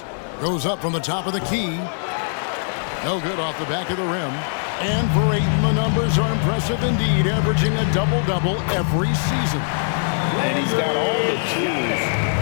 Goes up from the top of the key. No good off the back of the rim. And for Ayton, the numbers are impressive indeed, averaging a double-double every season. And he's got all the tools.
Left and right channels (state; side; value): silent; right; 62 dB below the other